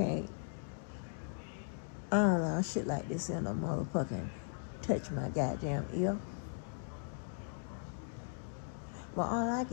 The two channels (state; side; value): silent; right; digital silence